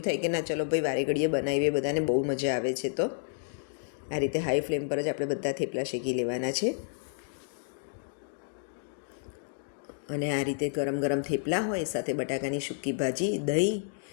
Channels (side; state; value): right; silent; digital silence